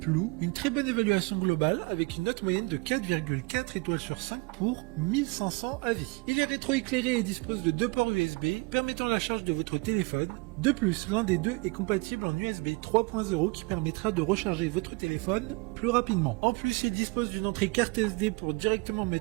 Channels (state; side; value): quieter; left; 27.2 dB